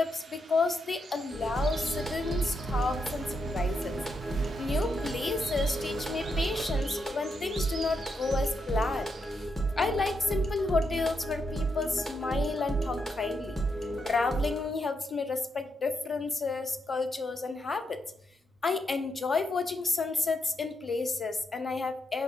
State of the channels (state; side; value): normal; both; correlation 0.82